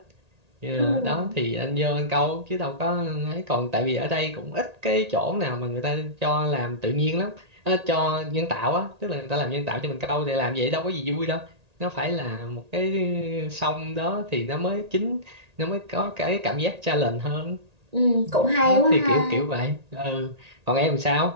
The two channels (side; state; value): left; late; 1.8 ms